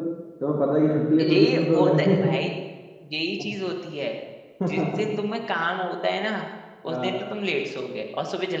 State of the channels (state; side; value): identical; both; correlation 1.00